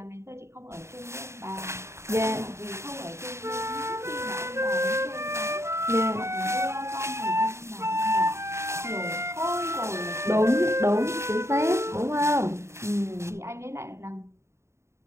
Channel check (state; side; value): late; left; 0.13 ms